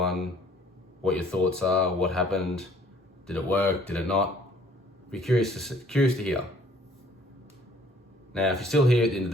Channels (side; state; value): both; normal; correlation 0.58